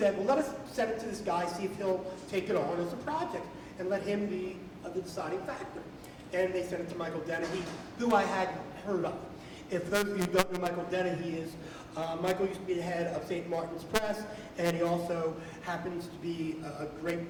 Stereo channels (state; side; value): identical; both; correlation 1.00